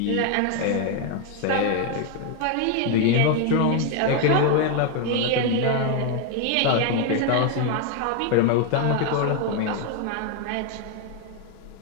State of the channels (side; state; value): both; different; correlation 0.01